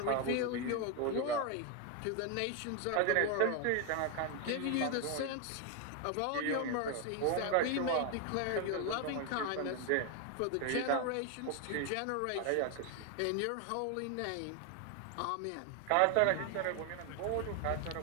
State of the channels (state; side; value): different; both; correlation 0.01